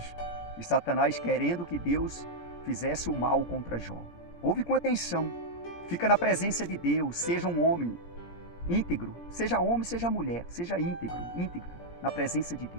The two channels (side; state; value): right; late; 17 ms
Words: E Satanás querendo que Deus fizesse o mal contra Jó. Ouve com atenção. Fica na presença de Deus. Seja um homem íntegro. Seja homem, seja mulher. Seja íntegro na presença de